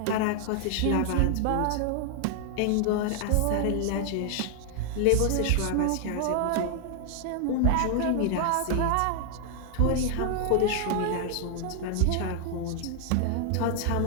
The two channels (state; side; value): different; both; correlation 0.00